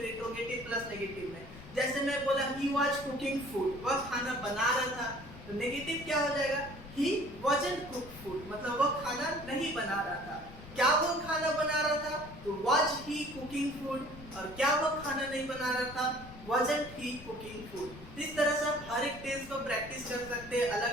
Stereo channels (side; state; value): left; noise; rumble, 16 dB below the sound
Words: इंट्रोगेटिव प्लस नेगेटिव में। जैसे मैं बोला ही वाज कुकिंग फूड, वह खाना बना रहा था, तो नेगेटिव क्या हो जाएगा? ही वाजंट कुक फूड, मतलब वह खाना नहीं बना रहा था। क्या वो खाना बना रहा था? तो वाज ही कुकिंग फूड। और क्या वो खाना नहीं बना रहा था? wasn't he cooking food। इस तरह से आप हर एक टेंस को प्रैक्टिस कर सकते हैं, अलग